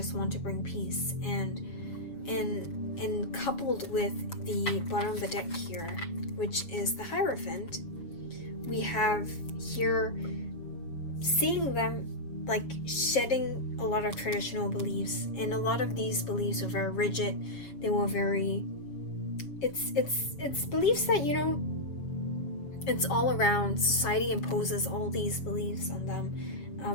want to bring peace. And coupled with the bottom of the deck here, which is the Hierophant, we have here seeing them like shedding a lot of traditional beliefs. And a lot of these beliefs were very rigid. They were very, it's beliefs that, it's all around. Society imposes all these beliefs on them,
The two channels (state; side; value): late; right; 7.1 ms